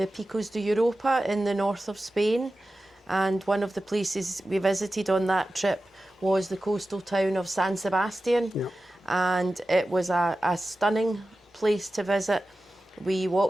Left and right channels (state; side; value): normal; both; correlation 0.94